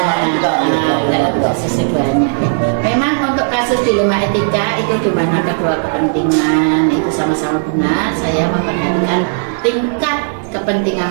dalam kasus keduanya. Memang untuk kasus dilema etika itu di mana kedua kepentingan itu sama-sama benar. Saya memperhatikan tingkat kepentingan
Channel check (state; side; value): silent; left; digital silence